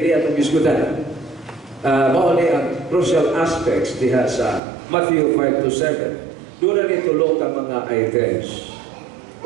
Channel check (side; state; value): left; drops out; at 4.6 s